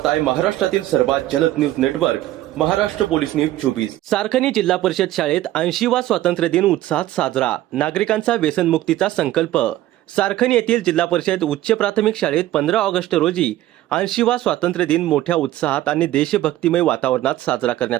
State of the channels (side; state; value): left; quieter; 14.7 dB